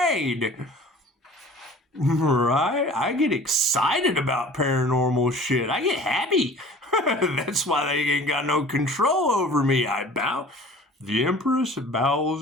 Right? I get excited about paranormal shit. I get happy. That's why they ain't got no control over me. I bow. The Empress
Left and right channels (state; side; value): normal; both; correlation 0.45